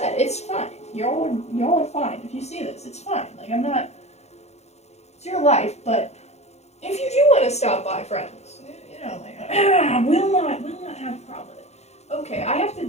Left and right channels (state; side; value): late; right; 0.32 ms